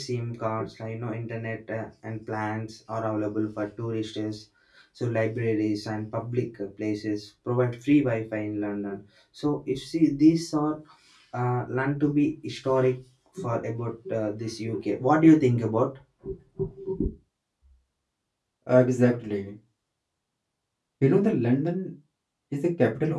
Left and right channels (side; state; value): both; identical; correlation 1.00